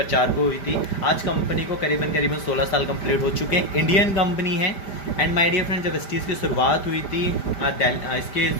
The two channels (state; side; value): late; right; 5.1 ms